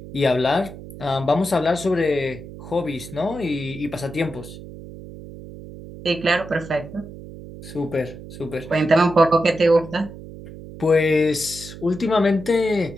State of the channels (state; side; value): noise; right; hum, 14 dB below the sound